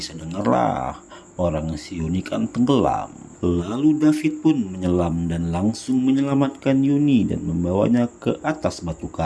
dengarlah. Orang si Yuni kan tenggelam. Lalu David pun menyelam dan langsung menyelamatkan Yuni dan membawanya ke atas batu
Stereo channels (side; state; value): both; identical; correlation 1.00